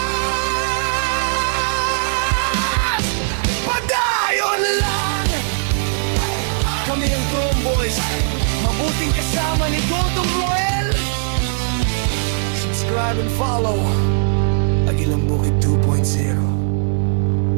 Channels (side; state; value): left; silent; 67 dB below the other